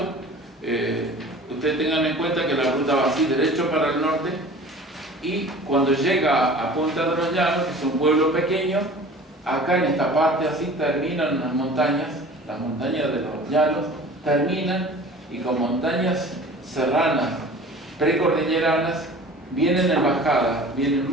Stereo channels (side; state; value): both; normal; correlation 0.43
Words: Ustedes tengan en cuenta que la ruta va así, derecho para el norte, y cuando llega a Punta de los Llanos, que es un pueblo pequeño, acá en esta parte así terminan las montañas de los llanos, terminan, y con montañas serranas, precordilleranas, vienen en bajada, vienen